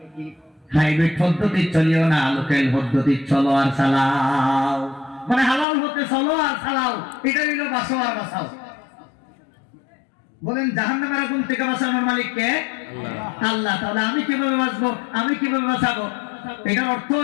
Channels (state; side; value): drops out; right; at 5.7 s